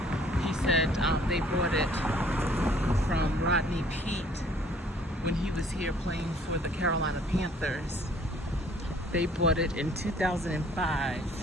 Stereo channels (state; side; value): normal; both; correlation 0.58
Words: he said they bought it from Rodney Peete when he was here playing for the Carolina Panthers. They bought it in 2005.